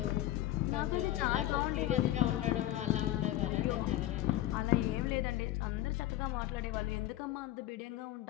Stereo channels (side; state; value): right; quieter; 14.5 dB